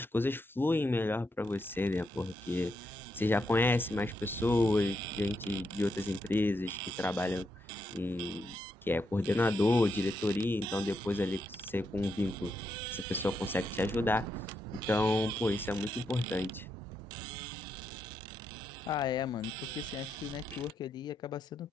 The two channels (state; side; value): normal; both; correlation 0.82